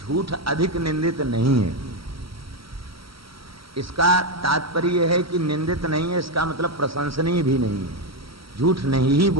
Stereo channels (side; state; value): left; late; 0.75 ms